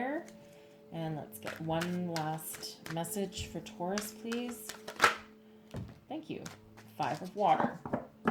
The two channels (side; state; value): both; identical; correlation 1.00